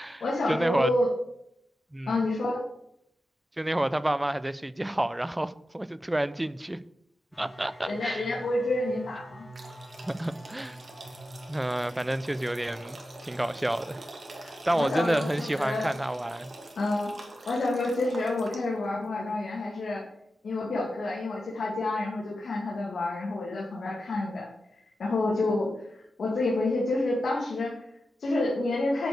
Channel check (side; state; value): both; normal; correlation 0.91